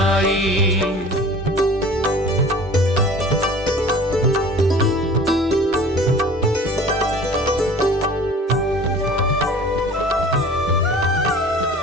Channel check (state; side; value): normal; both; correlation 0.44